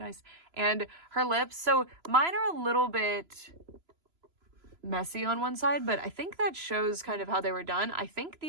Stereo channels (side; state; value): left; late; 3.0 ms